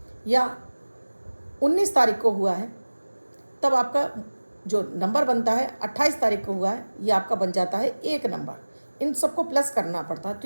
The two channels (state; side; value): inverted; both; correlation -1.00